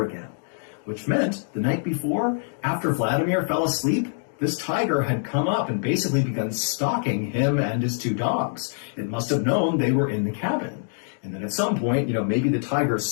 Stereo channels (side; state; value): right; silent; digital silence